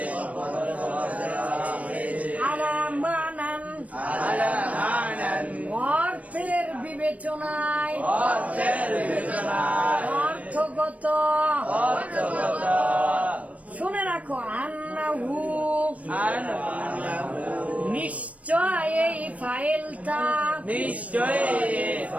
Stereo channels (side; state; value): left; late; 0.067 ms